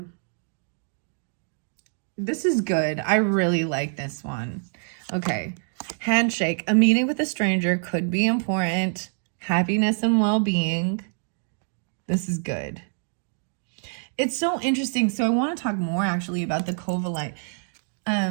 This is good. I really like this one. Okay. Handshake. A meeting with a stranger could be important. Happiness and well-being. This is good. It's so interesting. So I want to talk more actually about the Covellite.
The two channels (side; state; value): left; silent; 55 dB below the other